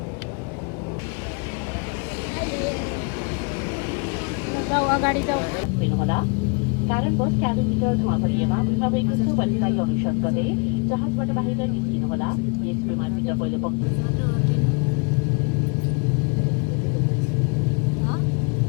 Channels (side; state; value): right; quieter; 35.1 dB